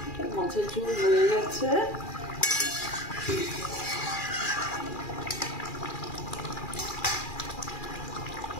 মাছের ঝোল হয়ে গেছে।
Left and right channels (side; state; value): right; late; 2.4 ms